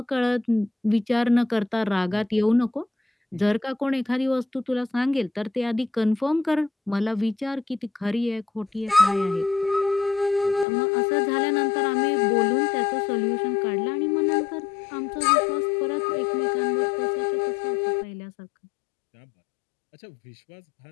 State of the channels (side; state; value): right; drops out; at 10.7 s